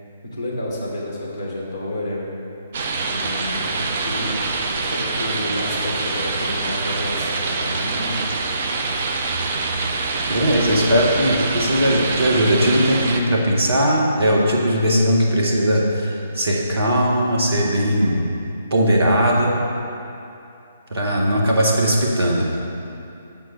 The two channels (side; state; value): both; inverted; correlation -0.74